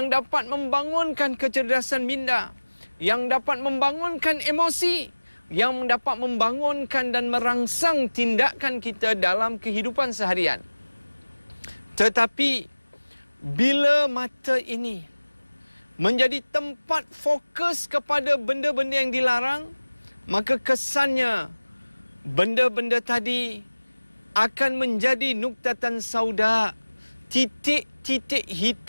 dapat membangunkan kecerdasan minda, yang dapat membangunkan emosi, yang dapat membangunkan dan merangsang tindakan kita dalam kehidupan seharian. Tetapi bila mata ini menjadi tempat fokus kepada benda-benda yang dilarang, maka kesannya benda-benda tadi akan menjadi nuktatan sauda, titik-titik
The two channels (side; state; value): both; inverted; correlation -1.00